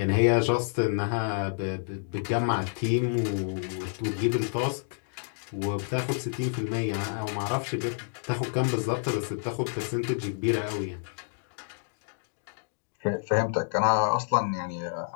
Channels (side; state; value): right; silent; digital silence